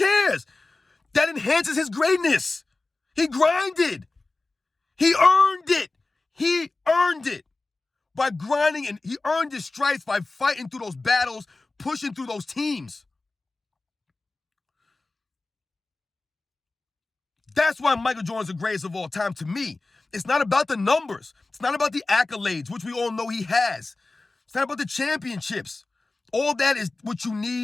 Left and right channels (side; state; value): right; quieter; 3.3 dB